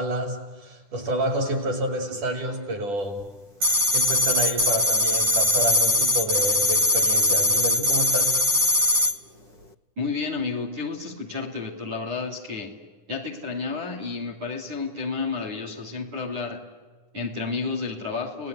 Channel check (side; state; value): left; late; 10 ms